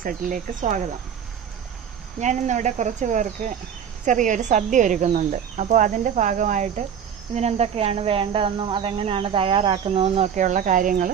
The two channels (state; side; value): quieter; left; 8.1 dB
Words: സെറ്റിലേക്ക് സ്വാഗതം. ഞാനിന്നിവിടെ കുറച്ച് പേർക്ക് ചെറിയൊരു സദ്യ ഒരുക്കുന്നുണ്ട്. അപ്പോൾ അതിൻ്റെ ഭാഗമായിട്ട് ഇതിനെന്തൊക്കെയാണ് വേണ്ടതെന്നും അതെങ്ങനെയാണ് തയ്യാറാക്കുന്നതെന്നും ഒക്കെയുള്ള കാര്യങ്ങൾ